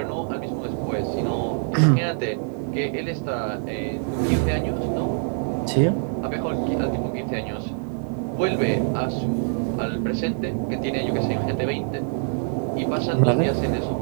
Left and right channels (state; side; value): silent; left; 59 dB below the other